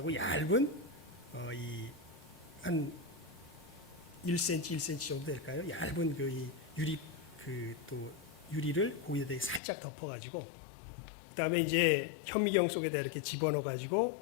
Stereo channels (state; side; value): drops out; right; at 9.6 s